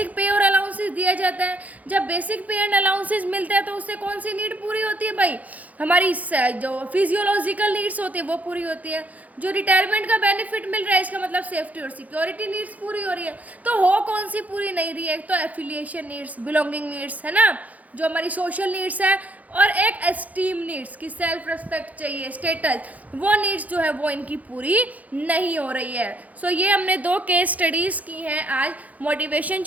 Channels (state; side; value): late; left; 0.076 ms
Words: पे और अलाउंसेस दिया जाता है। जब बेसिक पे एंड अलाउंसेस मिलते हैं तो उससे कौन सी नीड पूरी होती है भाई, हमारी जो फिजियोलॉजिकल नीड्स होती है वो पूरी होती है। जो रिटायरमेंट का बेनिफिट मिल रहा है इसका मतलब सेफ्टी और सिक्योरिटी नीड्स पूरी हो रही है। तो हो कौन सी पूरी नहीं रही है, एक तो एफिलिएशन नीड्स, बिलोंगिंग नीड्स है ना, जो हमारी सोशल नीड्स है, और एक एस्टीम नीड्स की सेल्फ रिस्पेक्ट चाहिए, स्टेटस, वो नीड्स जो है वो इनकी पूरी नहीं हो रही है। सो ये हमने दो केस स्टडीज़ की हैं आज मोटिवेशन